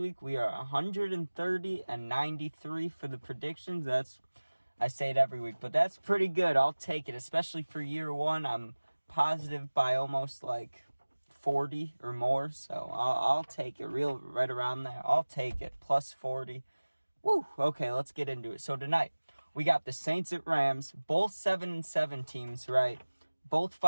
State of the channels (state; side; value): inverted; both; correlation -1.00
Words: we are 130 and 93 for the predictions. I say it every week, but that's pretty good. I'll take it, especially for year one. I'm positive by almost like 40 or more, so I'll take it right around there. I'll take it, plus 40. Woo! Okay, let's get into it. So tonight, we got the Saints at Rams, both 7-7 teams, right? Both